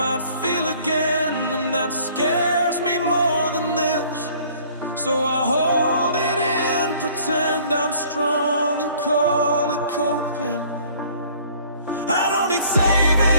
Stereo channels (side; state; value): both; inverted; correlation -0.55